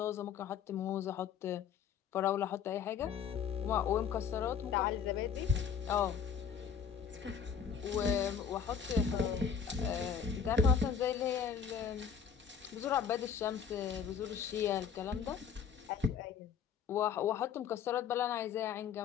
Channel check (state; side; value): quieter; right; 7.2 dB